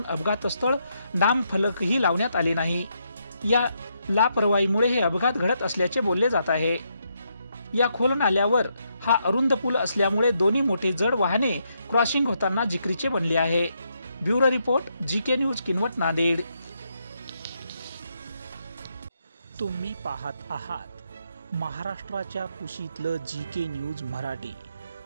अपघातस्थळ नामफलकही लावण्यात आले नाही। या लापरवाहीमुळे हे अपघात घडत असल्याचे बोलले जात आहे। या खोल नाल्यावर हा अरुंद पूल असल्यामुळे दोन्ही मोठे जड वाहने क्रॉसिंग होताना जिकरीचे बनले आहे। Bureau report GK news Kinwat Nanded. तुम्ही पाहत आहात महाराष्ट्राच्या कुशीतलं जीके न्यूज मराठी,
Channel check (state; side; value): inverted; both; correlation -0.78